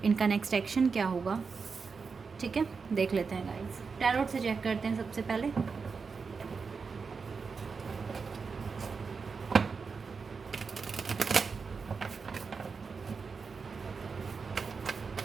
इनका नेक्स्ट एक्शन क्या होगा, ठीक है। देख लेते हैं गाइस, टैरोट से चेक करते हैं सबसे पहले।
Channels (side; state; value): left; quieter; 5.1 dB